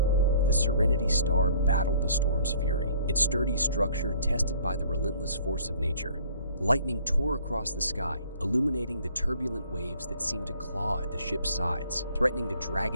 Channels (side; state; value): both; inverted; correlation -0.55